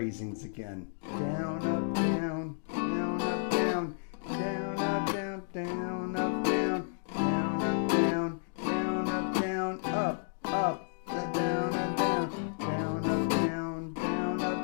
again. Down, up, down, down, up, down, down, up, down, down, up, down, down, up, down, down, up, down, up, up, down, up, down, down, up, down, down, up,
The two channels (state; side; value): silent; right; digital silence